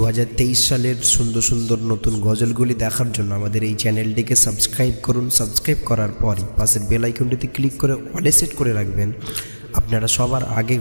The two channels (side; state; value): both; inverted; correlation -1.00